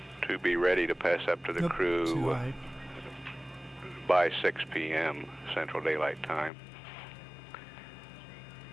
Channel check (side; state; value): right; drops out; at 6.5 s